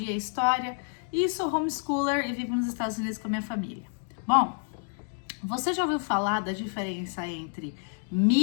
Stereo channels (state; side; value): silent; right; 59 dB below the other